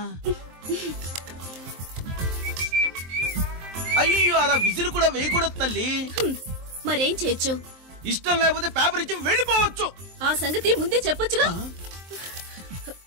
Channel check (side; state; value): left; late; 23 ms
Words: అయ్యో, అలా విజిల్ కూడా వేయకూడదు తల్లి. మరేం చేయొచ్చు? ఇష్టం లేకపోతే పేపర్ ఇచ్చి వెళ్ళిపోవచ్చు. ఆ సంగతి ముందే చెప్పొచ్చుగా.